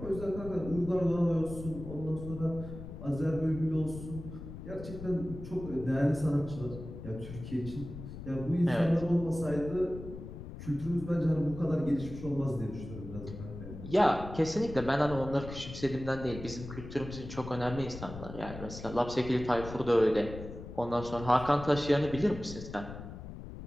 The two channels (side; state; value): left; noise; rumble, 11 dB below the sound